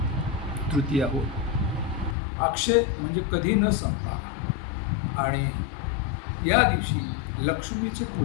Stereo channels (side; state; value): right; drops out; at 2.1 s